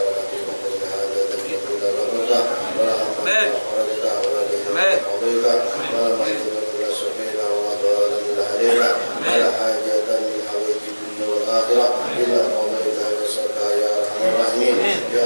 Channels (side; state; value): both; inverted; correlation -1.00